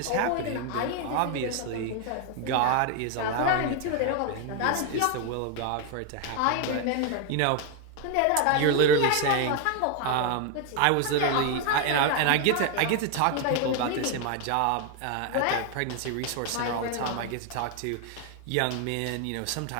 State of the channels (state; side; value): different; both; correlation 0.01